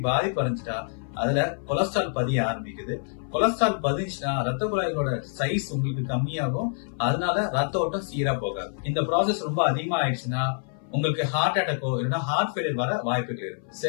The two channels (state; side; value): silent; right; 58 dB below the other